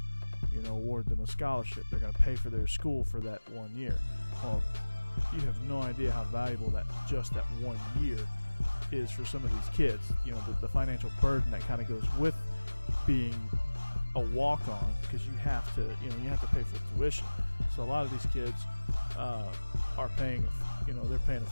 award them a scholarship. They're going to pay for their school for that 1 year. Well, you have no idea how valuable that 1 year is for some of these kids. The financial burden that kind of goes with being a walk-on, because you have to pay for tuition. So a lot of these kids are paying, they're paying a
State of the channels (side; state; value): both; inverted; correlation -1.00